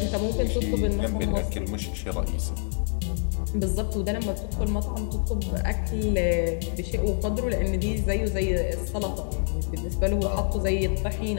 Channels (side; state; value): right; silent; 61 dB below the other